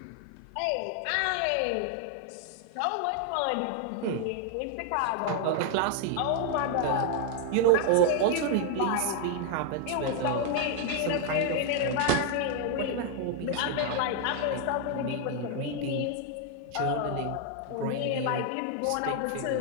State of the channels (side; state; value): both; different; correlation 0.01